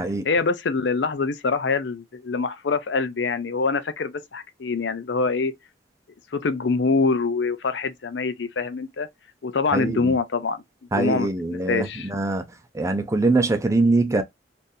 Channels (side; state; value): both; normal; correlation 0.30